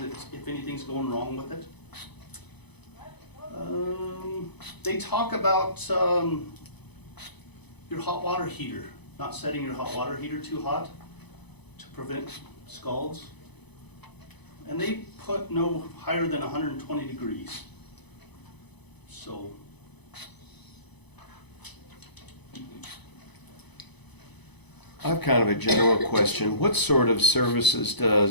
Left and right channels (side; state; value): right; late; 0.99 ms